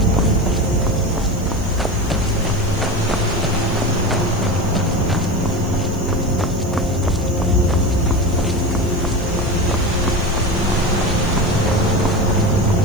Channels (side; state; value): right; noise; hiss, 21 dB below the sound